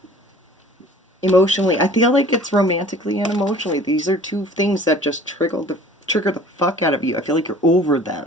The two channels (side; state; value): both; normal; correlation 0.48